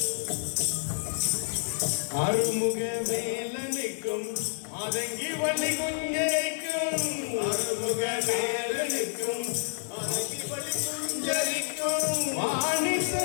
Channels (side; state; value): right; silent; digital silence